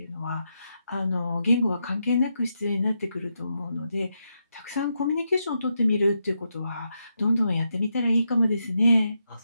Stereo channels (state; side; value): inverted; both; correlation -0.84